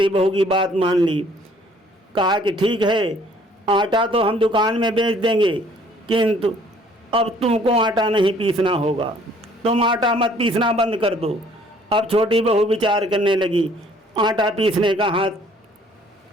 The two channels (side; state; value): both; normal; correlation 0.59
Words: बहू की बात मान ली। कहा कि ठीक है, आटा तो हम दुकान में बेच देंगे, किंतु अब तुमको आटा नहीं पीसना होगा, तुम आटा मत पीसना बंद कर दो। अब छोटी बहू विचार करने लगी, आटा पीसने का